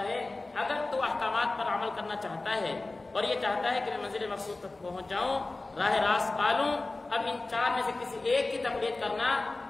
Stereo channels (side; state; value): right; quieter; 3.2 dB